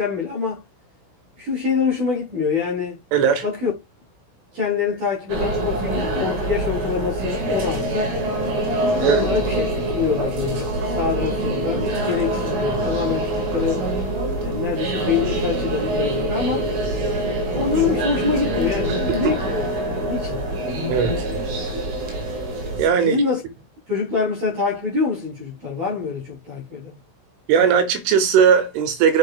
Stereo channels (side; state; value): left; late; 16 ms